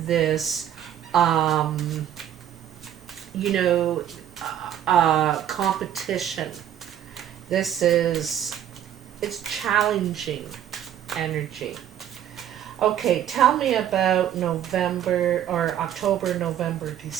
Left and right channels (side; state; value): left; quieter; 10.6 dB